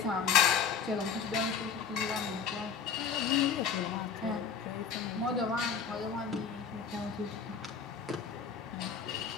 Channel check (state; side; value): quieter; right; 6.4 dB